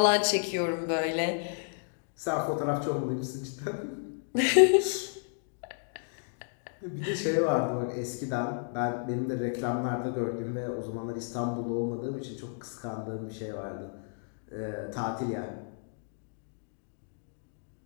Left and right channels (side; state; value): right; silent; digital silence